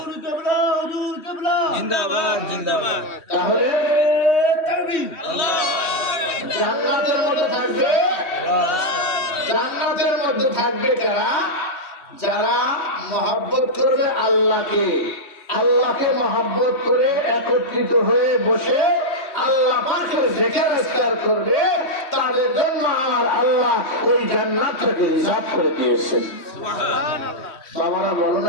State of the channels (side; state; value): right; late; 3.2 ms